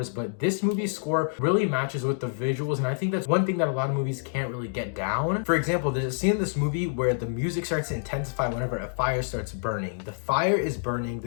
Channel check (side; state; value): right; silent; digital silence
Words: but this movie's score really matches with the visuals, and I think that's one thing that a lot of movies can't really get down. For example, there's a scene in this movie where the music starts to intensify whenever a fire starts burning. The fire is burning,